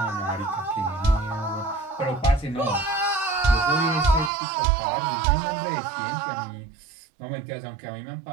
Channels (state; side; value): drops out; left; at 4.3 s